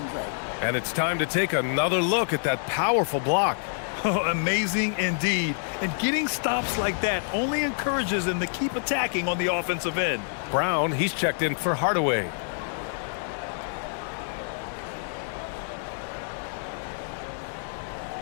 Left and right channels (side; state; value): right; silent; digital silence